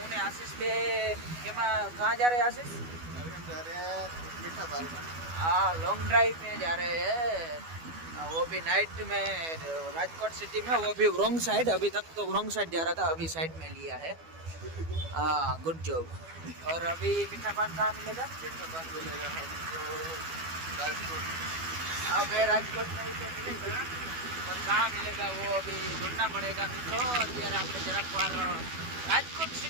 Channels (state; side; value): late; left; 12 ms